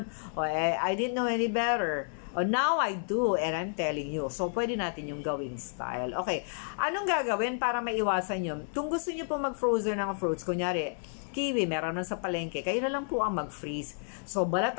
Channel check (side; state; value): right; silent; 57 dB below the other